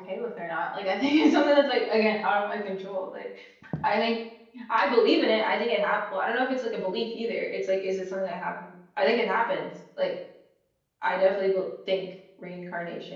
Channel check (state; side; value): identical; both; correlation 1.00